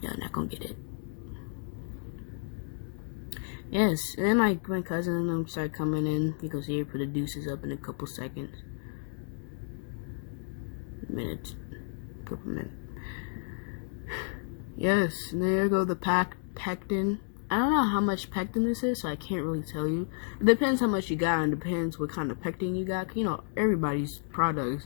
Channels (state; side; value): silent; right; digital silence